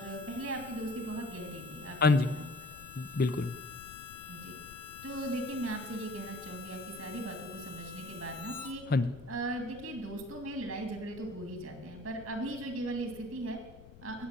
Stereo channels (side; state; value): left; noise; rumble, 17 dB below the sound